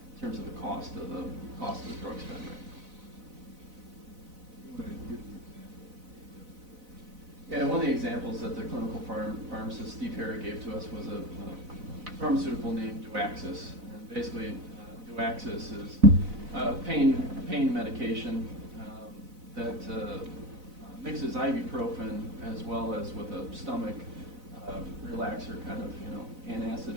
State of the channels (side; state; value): left; late; 4.0 ms